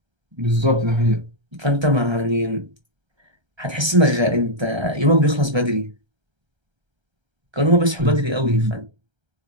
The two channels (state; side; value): late; left; 1.3 ms